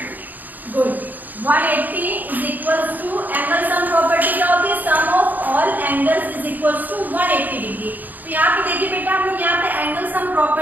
degree. Good. 180 is equal to angle sum property क्या होती है? Sum of all angles is equal to 180 degree. तो यहाँ पे देखिए बेटा, हम लोग यहाँ पे एंगल सम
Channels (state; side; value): late; left; 0.084 ms